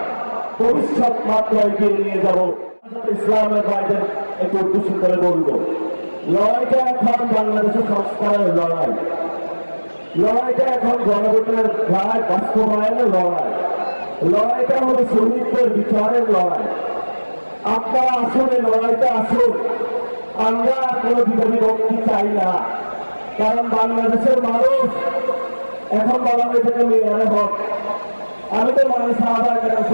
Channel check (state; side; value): inverted; both; correlation -1.00